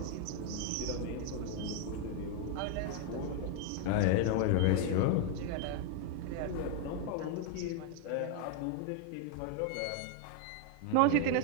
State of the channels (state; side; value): different; both; correlation 0.01